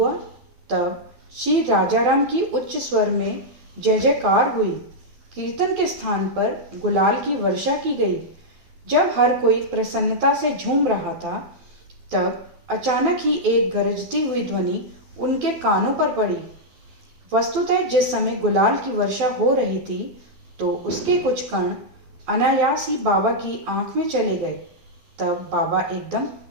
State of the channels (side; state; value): left; late; 12 ms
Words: तब श्री राजाराम की उच्च स्वर में जय जयकार हुई। कीर्तन के स्थान पर गुलाल की वर्षा की गई। जब हर कोई प्रसन्नता से झूम रहा था तब अचानक ही एक गरजती हुई ध्वनि उनके कानों पर पड़ी। वस्तुतः जिस समय गुलाल की वर्षा हो रही थी तो उसके कुछ कण अनायास ही बाबा की आंख में चले गए। तब बाबा एकदम